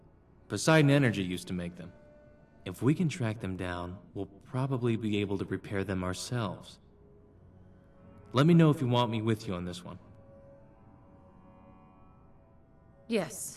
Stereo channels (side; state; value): both; identical; correlation 1.00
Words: Poseidon Energy used to make them. If we can track them down, we'll probably be able to repair them ourselves. Let me know if you want me with you on this one.